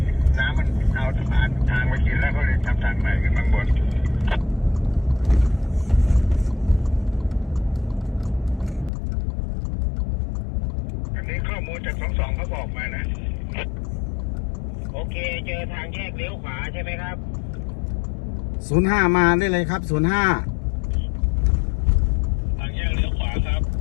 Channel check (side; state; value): right; drops out; at 8.9 s